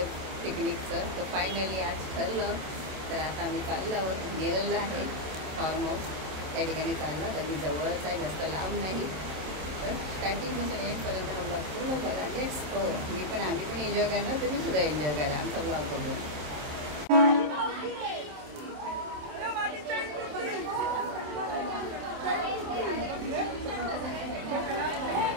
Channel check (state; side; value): late; left; 27 ms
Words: पिकनिकचं. तर फायनली आज ठरलं. तर आता आम्ही चाललो आहोत. नेरळला आहे फार्म हाऊस, त्या ठिकाणी चाललं. तर मी जवळच आहे, जास्त लांब नाही. तर स्टार्टिंगपासून एंडपर्यंत हा ब्लॉग पूर्ण बघा. Let's go. आम्ही पण एन्जॉय करणार, तुम्ही सुद्धा एन्जॉय करा आमचा ब्लॉग बघून.